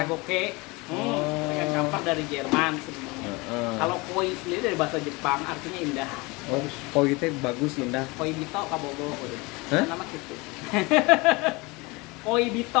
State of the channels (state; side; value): quieter; right; 25.2 dB